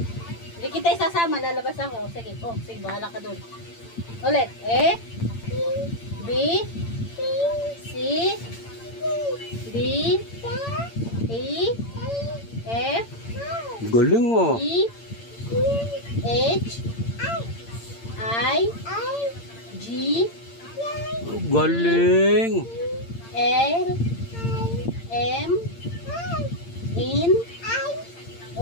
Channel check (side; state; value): right; late; 8.8 ms